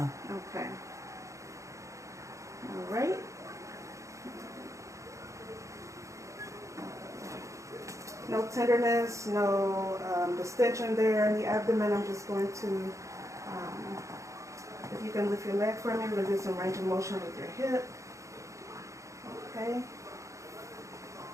Okay. All right. No tenderness, no distension there in the abdomen. I'm just going to, if you can lift your leg for me, we're going to do some range of motion with your hip. Okay.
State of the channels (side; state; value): left; late; 0.15 ms